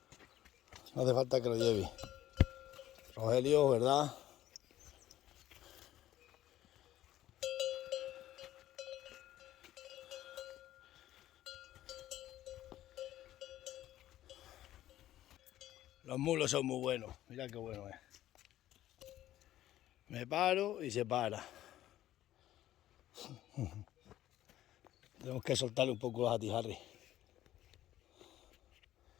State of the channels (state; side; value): quieter; right; 13.4 dB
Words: No hace falta que lo lleve. Rogelio, ¿verdad? Los mulos son muy buenos. Mira qué bueno es. Me paro y se para. Tenemos que soltarle un poco a Harry.